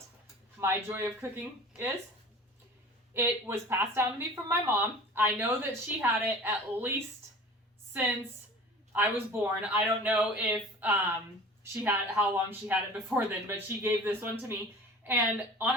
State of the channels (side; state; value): both; normal; correlation 0.42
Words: my Joy of Cooking is. It was passed down to me from my mom. I know that she had it at least since I was born. I don't know if how long she had it before then, but she gave this one to me. And